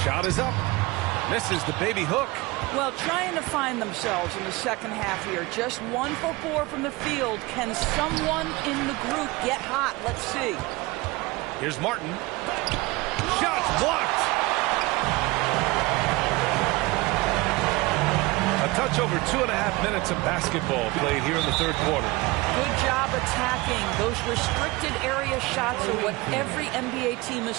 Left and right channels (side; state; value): left; quieter; 22.3 dB